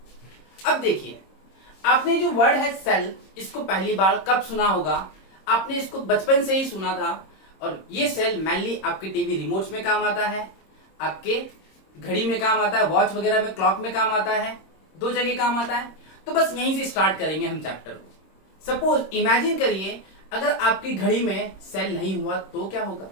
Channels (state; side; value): late; right; 26 ms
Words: अब देखिए, आपने जो वर्ड है सेल, इसको पहली बार कब सुना होगा? आपने इसको बचपन से ही सुना था। और ये सेल मेनली आपके टीवी रिमोट्स में काम आता है, आपके घड़ी में काम आता है, वॉच वगैरह में, क्लॉक में काम आता है, दो जगह काम आता है। तो बस यहीं से स्टार्ट करेंगे हम चैप्टर को। सपोज इमेजिन करिए, अगर आपकी घड़ी में सेल नहीं हुआ तो क्या होगा?